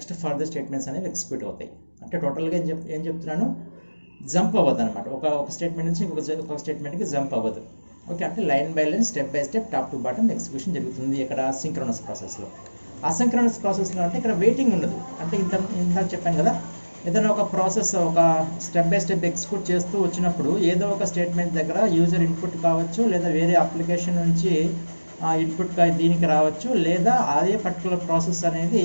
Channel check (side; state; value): both; inverted; correlation -1.00